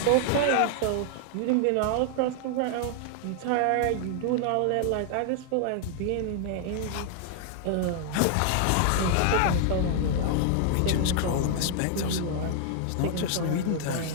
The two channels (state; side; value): different; both; correlation 0.00